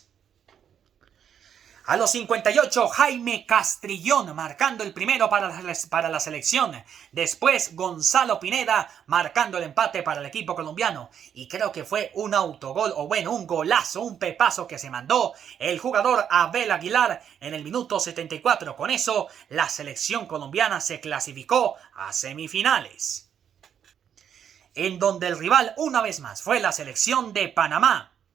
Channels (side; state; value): left; quieter; 8.6 dB